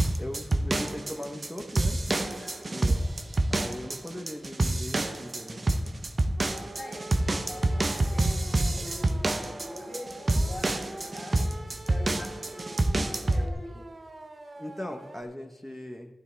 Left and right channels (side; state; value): both; normal; correlation 0.97